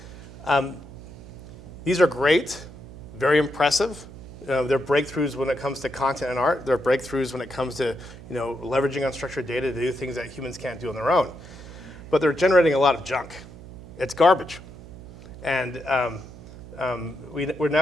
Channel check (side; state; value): right; noise; hum, 15 dB below the sound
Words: These are great, very impressive. They're breakthroughs when it comes to content and art. They're breakthroughs when it comes to leveraging unstructured data to do things that humans can't do on their own. But they're generating a lot of junk. It's garbage. And we're